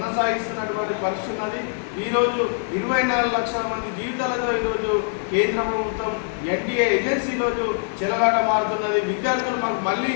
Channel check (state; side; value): silent; right; digital silence